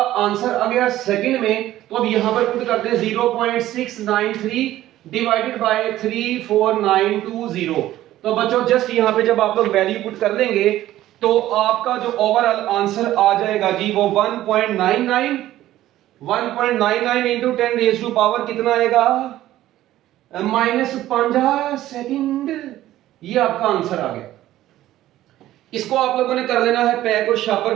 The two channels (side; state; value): left; quieter; 14.2 dB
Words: आंसर आ गया सेकंड में। तो अब यहां पर पुट करते हैं 0.693 डिवाइडेड बाय 34920। तो बच्चों जस्ट यहां पे जब आप लोग वैल्यू पुट कर लेंगे तो आपका जो ओवरऑल आंसर आ जाएगा जी वो 1.99 इंटू 10 रेज़ टू पावर कितना आएगा, -5 सेकंड। ये आपका आंसर आ गया। इसको आप लोगों ने कर लेना है पैक और